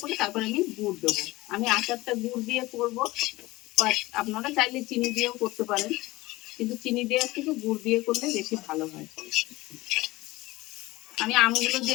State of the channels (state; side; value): quieter; right; 19.5 dB